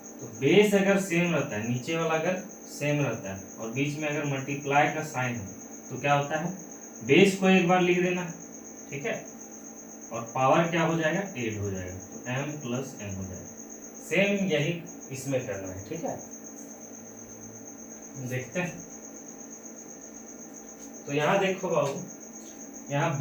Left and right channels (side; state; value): both; identical; correlation 1.00